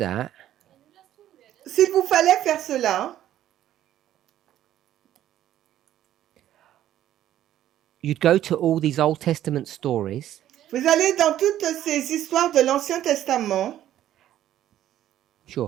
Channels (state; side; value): quieter; left; 12.3 dB